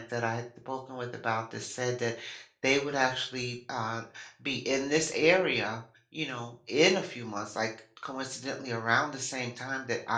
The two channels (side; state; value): both; identical; correlation 1.00